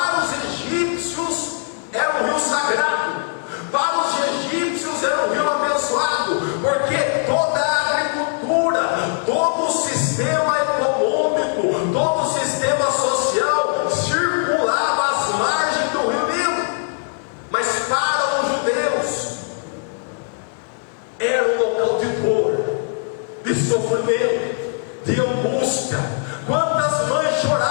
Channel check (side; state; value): right; silent; 61 dB below the other